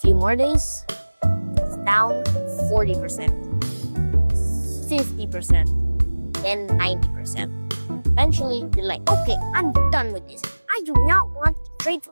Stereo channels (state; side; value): inverted; both; correlation -1.00